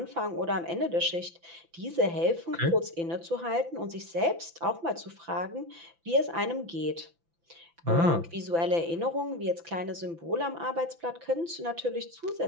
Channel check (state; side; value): late; left; 5.9 ms